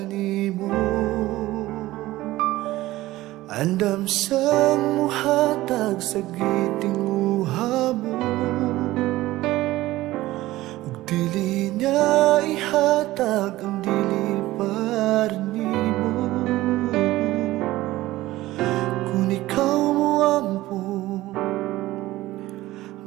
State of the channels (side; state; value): left; quieter; 17.1 dB